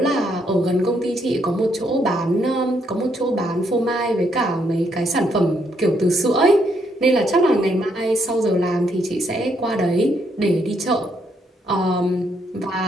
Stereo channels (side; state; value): both; normal; correlation 0.74